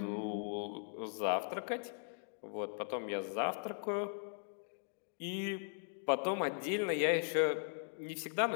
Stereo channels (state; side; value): silent; right; digital silence